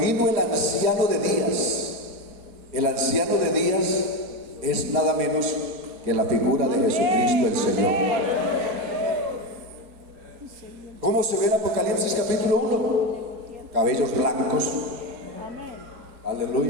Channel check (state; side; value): late; left; 4.8 ms